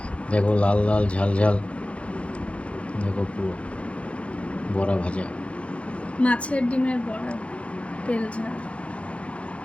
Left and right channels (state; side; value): late; right; 0.062 ms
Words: দেখো, লাল লাল ঝাল ঝাল। দেখো, পুরো বড়া ভাজা, মাছের ডিমের বড়া, তেল ঝাল।